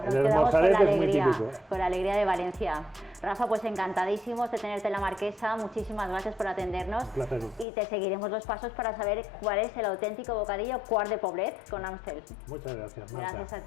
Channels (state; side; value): drops out; right; at 7.7 s